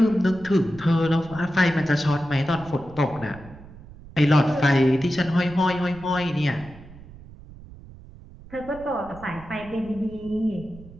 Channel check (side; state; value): right; noise; rumble, 19 dB below the sound